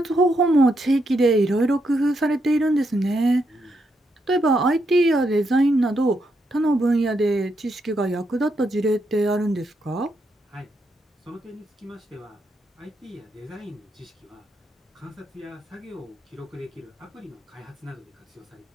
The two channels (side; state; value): both; normal; correlation 0.80